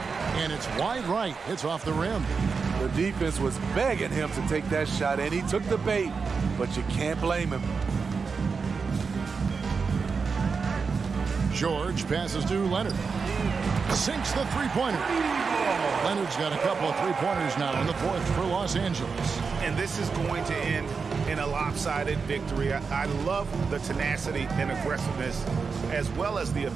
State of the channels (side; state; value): left; quieter; 5.1 dB